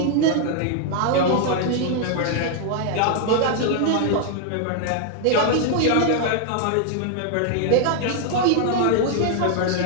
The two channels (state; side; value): different; both; correlation 0.00